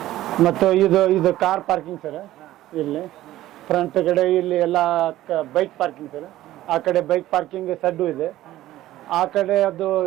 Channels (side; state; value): left; quieter; 14.8 dB